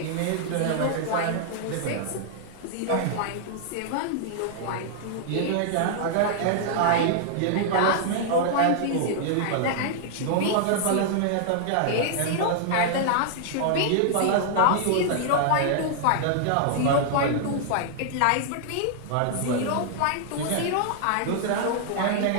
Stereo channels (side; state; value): both; different; correlation -0.01